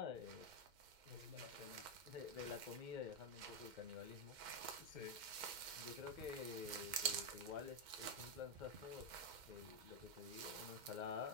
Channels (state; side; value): late; left; 2.1 ms